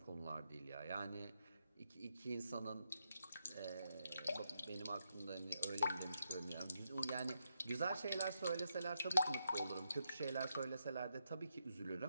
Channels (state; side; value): inverted; both; correlation -0.82